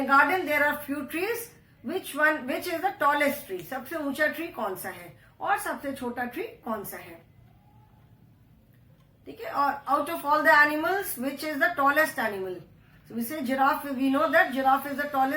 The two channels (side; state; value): both; identical; correlation 1.00